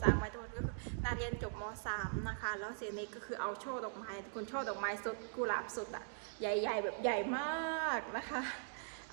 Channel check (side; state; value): left; silent; digital silence